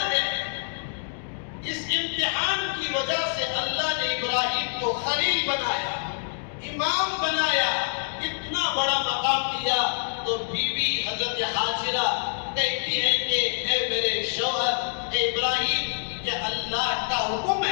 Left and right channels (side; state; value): right; silent; digital silence